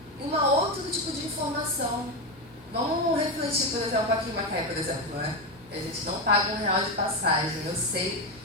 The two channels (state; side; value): normal; both; correlation 0.12